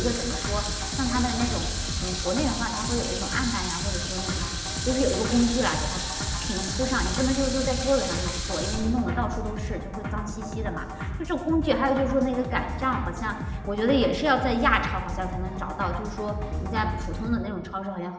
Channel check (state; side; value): identical; both; correlation 1.00